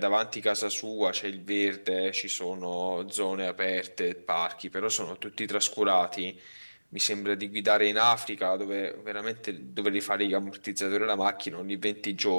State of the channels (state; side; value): inverted; both; correlation -1.00